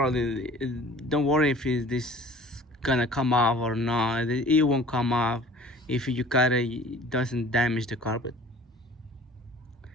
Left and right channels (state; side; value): normal; both; correlation 0.47